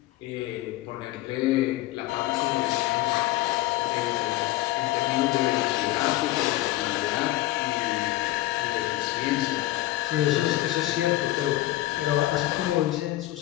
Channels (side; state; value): right; quieter; 16.6 dB